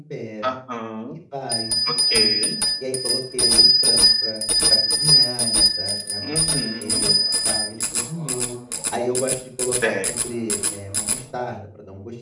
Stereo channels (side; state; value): both; identical; correlation 1.00